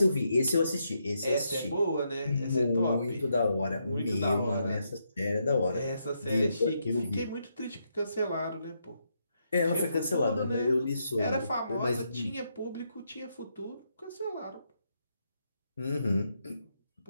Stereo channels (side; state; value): both; inverted; correlation -0.80